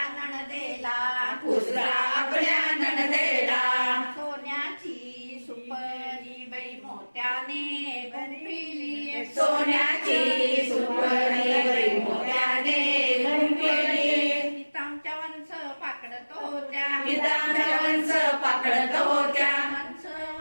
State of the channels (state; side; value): inverted; both; correlation -1.00